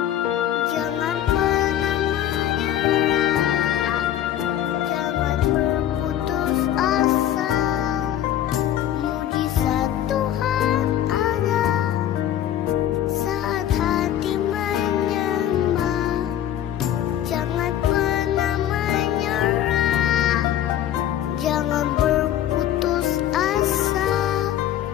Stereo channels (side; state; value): right; quieter; 11.4 dB